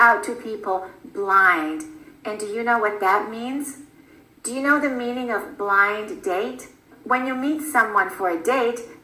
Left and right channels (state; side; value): identical; both; correlation 1.00